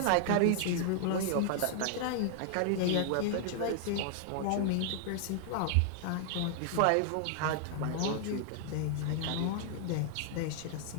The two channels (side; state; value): both; different; correlation 0.00